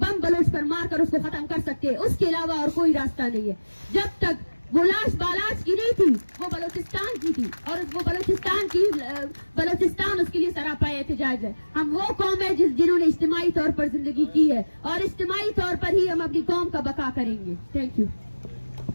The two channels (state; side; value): inverted; both; correlation -1.00